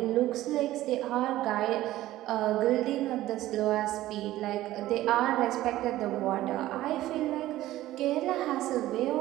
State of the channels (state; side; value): quieter; left; 15.3 dB